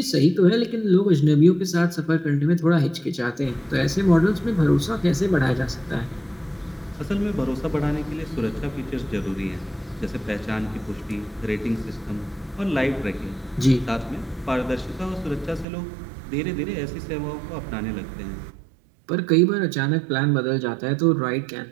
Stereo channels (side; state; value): left; drops out; at 15.7 s